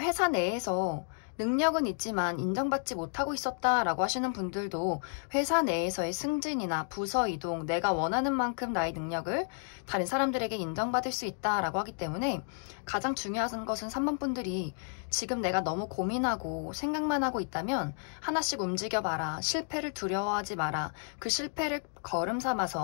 내에서 능력은 있지만 인정받지 못하고 있었다라고 하시는 분들도 회사 내에서의 승진이나 부서 이동, 내가 원하는 만큼 나의 능력을 다른 사람들에게 인정받을 수 있다라고 하기 때문에 가장 중요한 것은 3번 분들이 지금 내가 너무 고민하고 생각만 하고 있다면 하나씩 움직여봐라. 실패를 두려워하지 마라. 그 실패를 걸음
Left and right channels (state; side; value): silent; right; 57 dB below the other